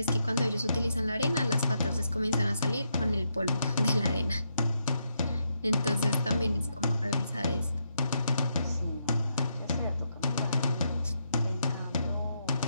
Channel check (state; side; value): inverted; both; correlation -0.80